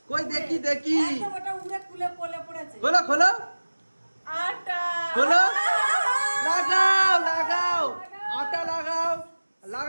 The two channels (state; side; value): inverted; both; correlation -1.00